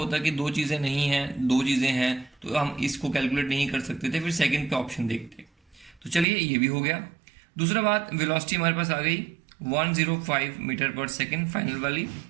कि 2 चीज़ें नहीं हैं, 2 चीज़ें हैं, तो हम इसको कैलकुलेट नहीं कर सकते थे, फिर सेकंड पे ऑप्शन देखते। तो चलिए ये भी हो गया। दूसरा बात, वेलोसिटी हमारे पास आ गई 105 मीटर पर सेकेंड फाइनल वाली,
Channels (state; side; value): drops out; left; at 6.2 s